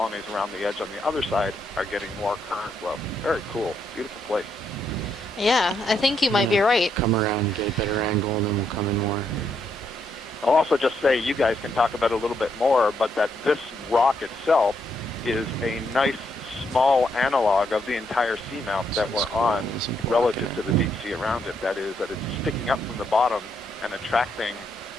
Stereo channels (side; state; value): both; normal; correlation 0.76